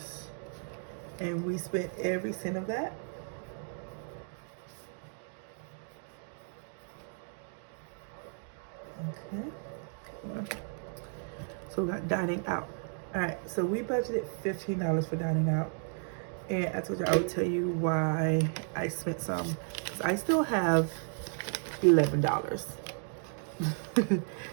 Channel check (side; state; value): left; silent; 55 dB below the other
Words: and we spent every cent of that. Okay. So we got dining out. All right, so we budgeted $15 for dining out, and I told you I would tell you why I spent some. 'Cause I still have $11.